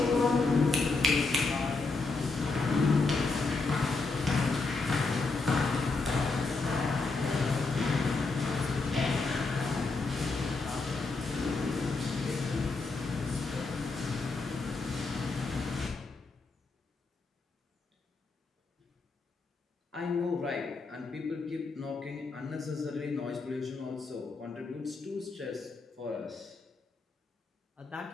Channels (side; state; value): right; quieter; 3.8 dB